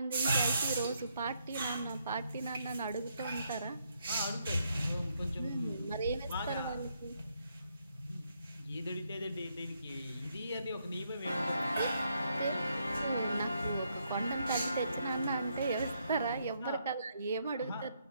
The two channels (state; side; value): inverted; both; correlation -0.76